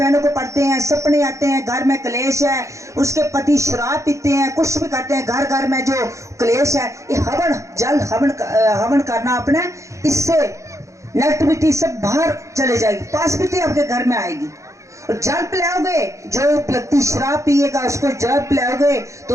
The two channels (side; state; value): left; late; 0.15 ms